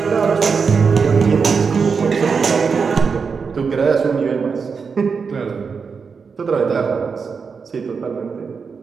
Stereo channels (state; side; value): quieter; left; 5.5 dB